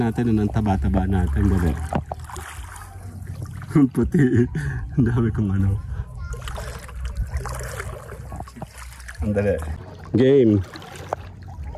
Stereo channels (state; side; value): identical; both; correlation 1.00